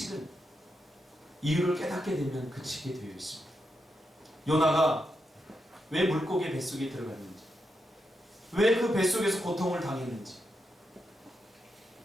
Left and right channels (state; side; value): normal; both; correlation 0.85